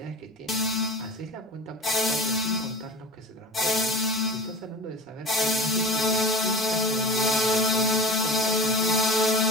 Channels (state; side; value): normal; both; correlation 0.32